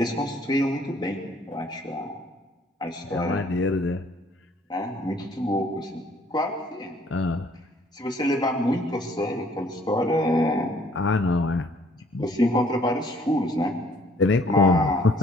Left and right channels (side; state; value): both; normal; correlation 0.60